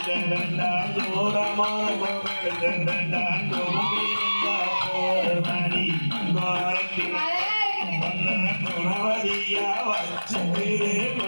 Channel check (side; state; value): both; inverted; correlation -1.00